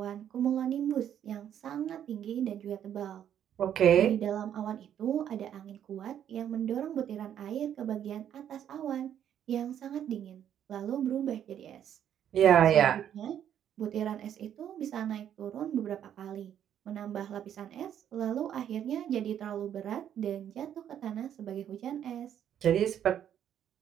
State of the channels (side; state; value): left; quieter; 9.8 dB